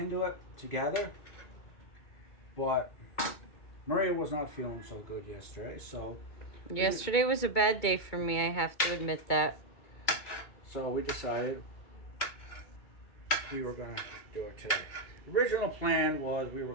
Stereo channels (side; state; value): right; late; 2.2 ms